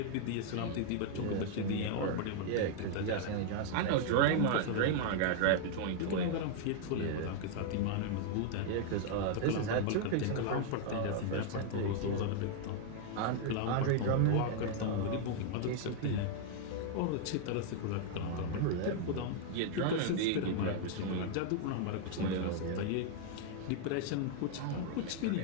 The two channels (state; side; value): different; both; correlation 0.00